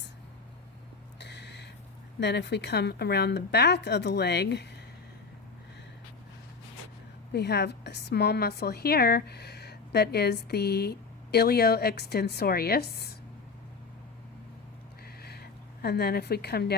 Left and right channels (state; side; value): quieter; right; 4.6 dB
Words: Then if we come around the back of the leg, we have a small muscle here that is the ilioextensorius. And then if we come